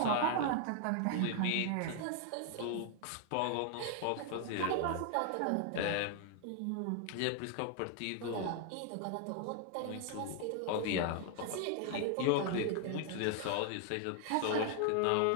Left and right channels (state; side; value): different; both; correlation 0.00